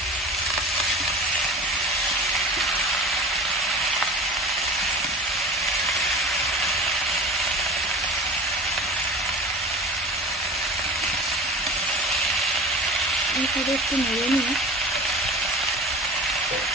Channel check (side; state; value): both; normal; correlation 0.37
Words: এইভাবে একটু নেড়ে নিয়ে